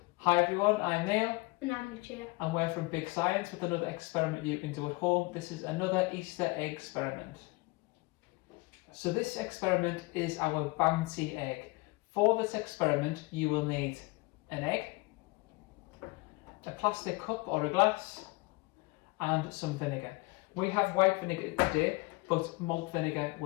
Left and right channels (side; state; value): right; quieter; 24.8 dB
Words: Hi everyone, I'm Neil. And I'm Lucia. And we're from Big Science with another experiment you can do at home. This is another Easter egg experiment. So this experiment is our Bouncy Egg. For this experiment you will need an egg, a plastic cup or a glass, and some vinegar. We have white vinegar today, but malt vinegar